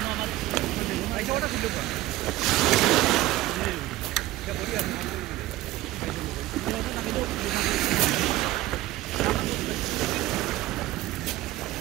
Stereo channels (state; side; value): quieter; left; 16.3 dB